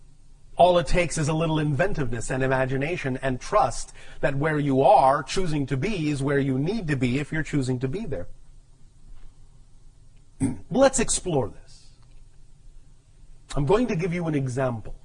All it takes is a little inventiveness and imagination and trust that where you are choosing to be is where you need to be if you're choosing to be there. Let's explore this. I'm going to give you an example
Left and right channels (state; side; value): identical; both; correlation 1.00